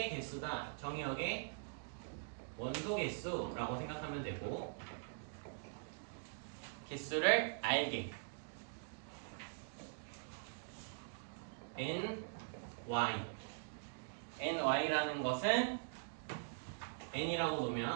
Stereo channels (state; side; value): silent; left; digital silence